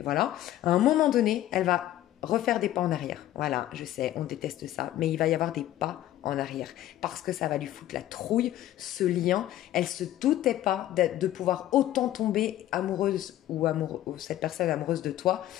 voilà, à un moment donné, elle va refaire des pas en arrière. Voilà, je sais, on déteste ça, mais il va y avoir des pas en arrière parce que ça va lui foutre la trouille, ce lien. Elle se doutait pas de pouvoir autant tomber amoureuse ou cette personne amoureuse de toi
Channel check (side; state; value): right; quieter; 13.5 dB